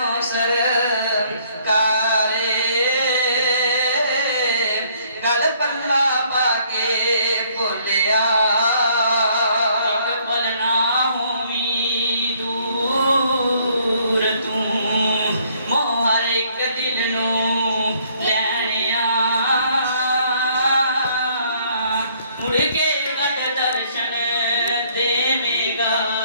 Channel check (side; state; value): both; inverted; correlation -0.64